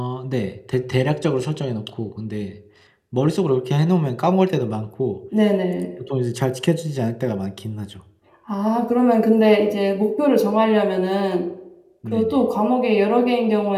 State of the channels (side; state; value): both; identical; correlation 1.00